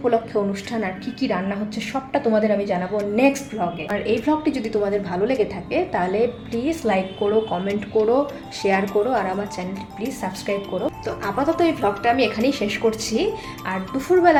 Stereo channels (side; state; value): both; identical; correlation 1.00